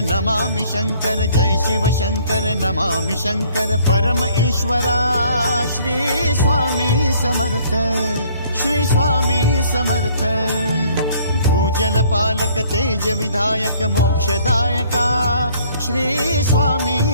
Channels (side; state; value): both; inverted; correlation -0.59